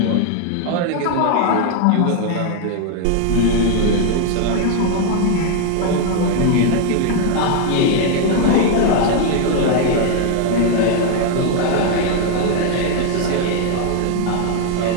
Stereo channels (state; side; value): different; both; correlation 0.00